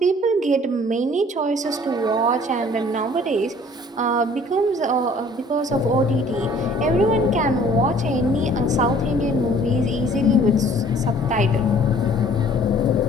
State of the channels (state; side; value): normal; both; correlation 0.54